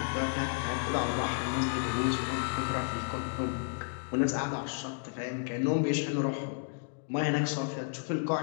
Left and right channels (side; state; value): right; silent; digital silence